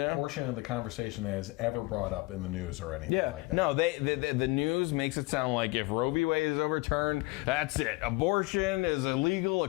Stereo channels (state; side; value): quieter; right; 24.0 dB